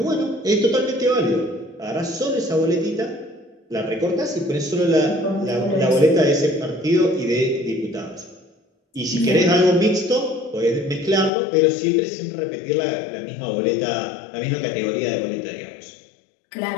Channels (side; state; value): right; drops out; at 11.3 s